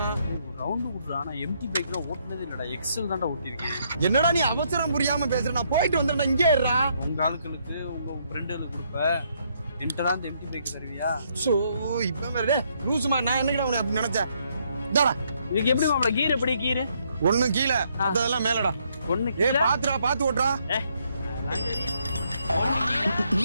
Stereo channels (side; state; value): both; inverted; correlation -0.72